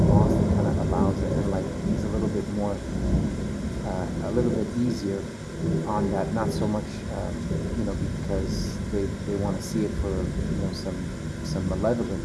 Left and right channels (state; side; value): identical; both; correlation 1.00